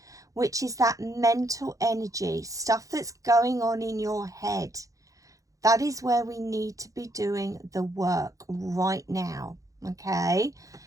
which is that mental energy, stuff that's going on in your head. That is where we need to be doing the work right now, okay?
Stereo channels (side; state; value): left; late; 0.16 ms